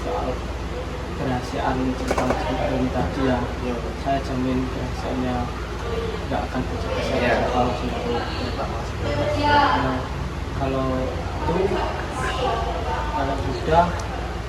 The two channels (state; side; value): identical; both; correlation 1.00